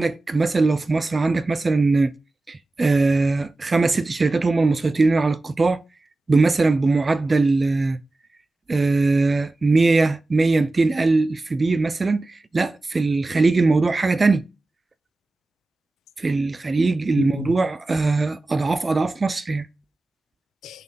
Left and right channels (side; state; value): left; quieter; 3.0 dB